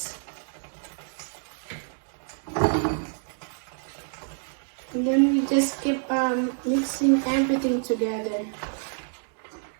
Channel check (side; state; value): left; silent; 58 dB below the other